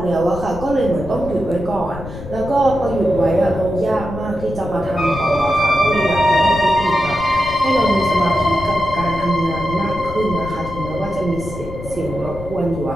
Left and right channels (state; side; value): noise; left; rumble, 11 dB below the sound